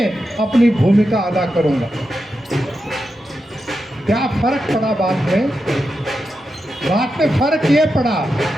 अपनी भूमिका अदा करूंगा। क्या फर्क पड़ा बात में फर्क ये पड़ा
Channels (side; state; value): both; normal; correlation 0.88